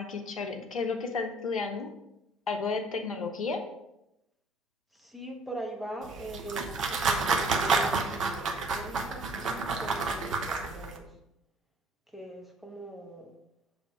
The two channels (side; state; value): both; normal; correlation 0.56